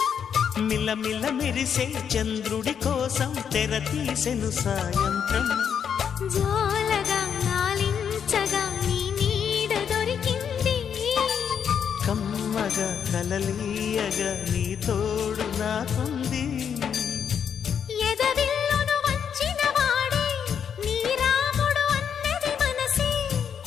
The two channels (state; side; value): quieter; right; 7.7 dB